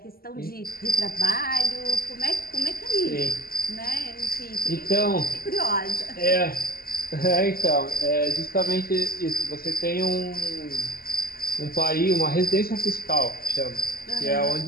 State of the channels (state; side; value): late; right; 0.43 ms